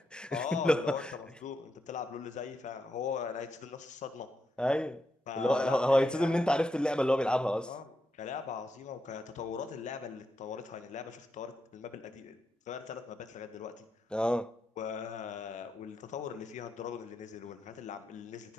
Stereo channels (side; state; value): both; normal; correlation 0.84